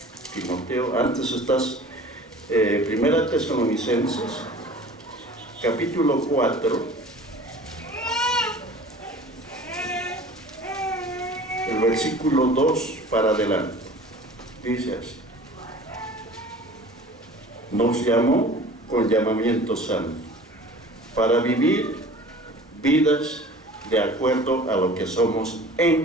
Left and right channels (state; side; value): normal; both; correlation 0.44